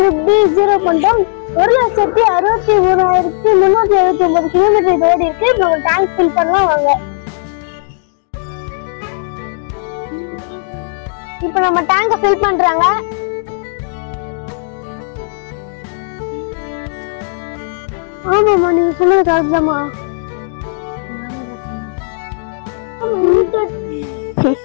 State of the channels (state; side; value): silent; right; digital silence